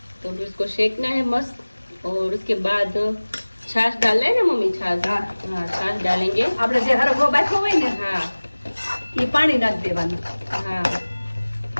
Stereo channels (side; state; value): both; inverted; correlation -1.00